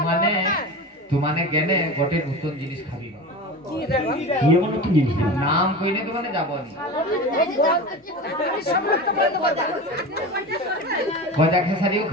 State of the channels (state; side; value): normal; both; correlation 0.29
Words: মানে তোমানে গেলে গোটে নতুন জিনিস খাবি কি এমন নতুন জিনিস? নাম কইলে তোমানে যাবো নি। গজা খেসারিও